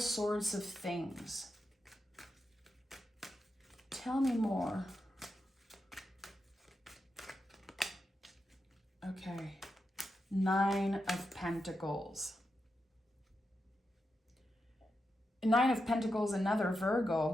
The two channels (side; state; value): both; normal; correlation 0.87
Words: of things. Tell me more. Okay, 9 of Pentacles. 9 of Pentacles, another